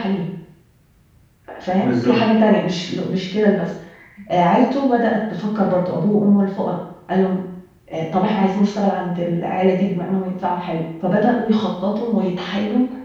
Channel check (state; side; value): identical; both; correlation 1.00